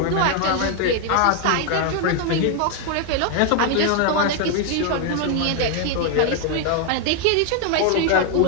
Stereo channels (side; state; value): both; different; correlation 0.01